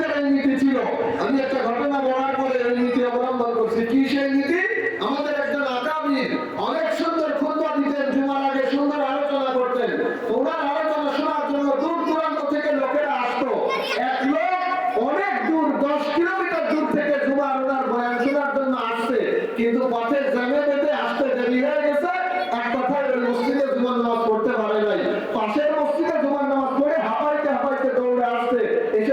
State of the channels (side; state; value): both; identical; correlation 1.00